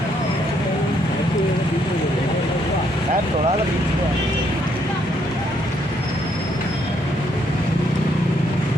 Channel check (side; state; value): both; normal; correlation 0.72